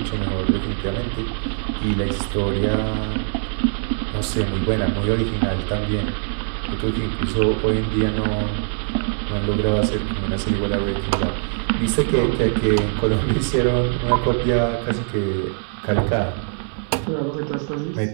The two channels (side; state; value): left; silent; 62 dB below the other